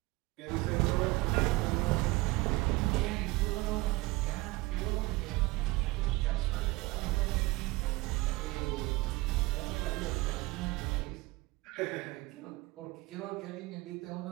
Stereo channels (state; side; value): quieter; left; 21.6 dB